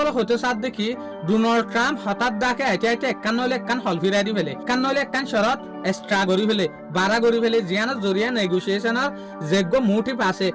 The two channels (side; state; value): both; identical; correlation 1.00